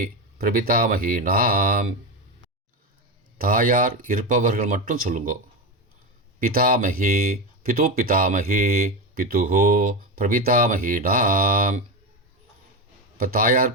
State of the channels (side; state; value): both; normal; correlation 0.17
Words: பிரபிதாமகீனாம். தாயார் இருப்பவர்கள் மட்டும் சொல்லுங்கோ. பிதாமகி பிது பிதாமகி பிதுஹோ பிரபிதாமகீனாம். இப்போ தாயார்